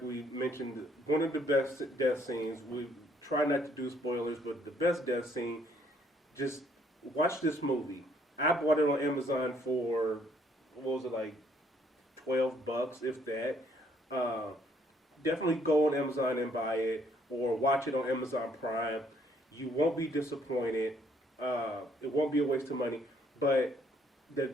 we mentioned, one of the best death scenes. We try not to do spoilers, but the best death scene. Just watch this movie. I bought it on Amazon for, what was it, like $12, if that. Definitely go on Amazon and buy it, or watch it on Amazon Prime. You won't be disappointed. It won't be a waste of money. But the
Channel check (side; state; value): both; normal; correlation 0.66